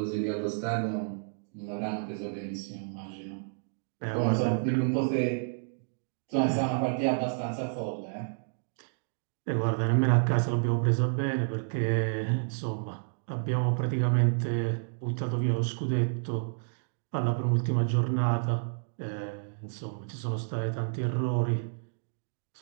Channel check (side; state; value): left; silent; digital silence